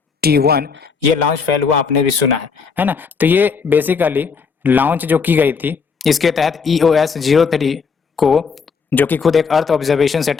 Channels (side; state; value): right; quieter; 5.5 dB